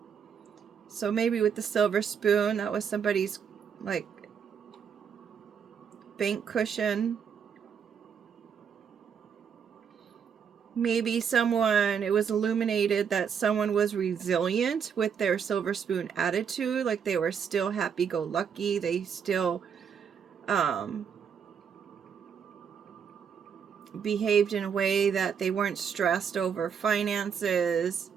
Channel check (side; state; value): left; quieter; 7.2 dB